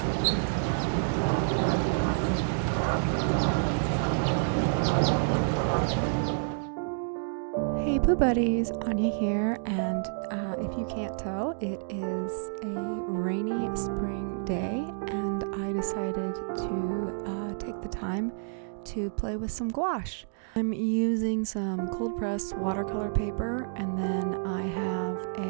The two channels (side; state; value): left; silent; digital silence